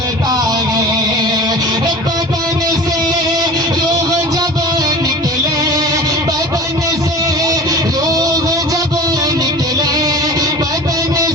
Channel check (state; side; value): normal; both; correlation 0.38